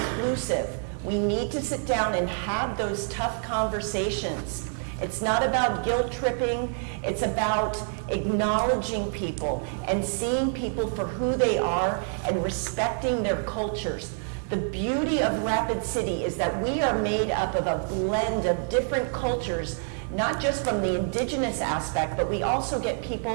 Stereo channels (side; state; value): left; silent; 60 dB below the other